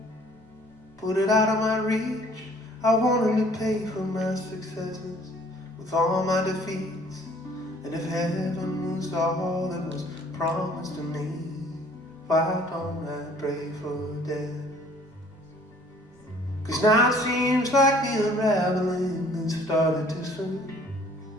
put it out of my reach. I wanted to pay for my successes with all my defeats. And if heaven was all that was promised to me, why don't I pray for death? 'Cause now it seems like the unraveling has started too soon.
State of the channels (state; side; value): normal; both; correlation 0.56